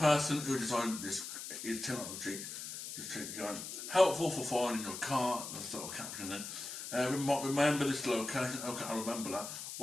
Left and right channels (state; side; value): noise; left; hiss, 8 dB below the sound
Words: who designed this is technology. Just keep going. Helpful for finding your car. That's sort of caption there. Remember this location. Okay, I remember that.